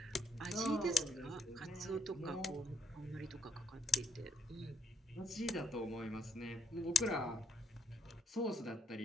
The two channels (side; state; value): both; normal; correlation 0.73